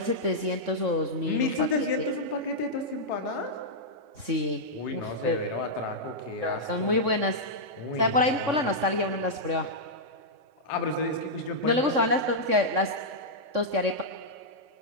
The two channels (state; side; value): late; left; 3.6 ms